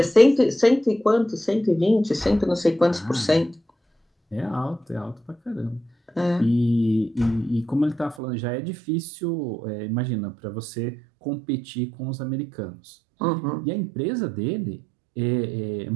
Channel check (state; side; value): drops out; left; at 8.2 s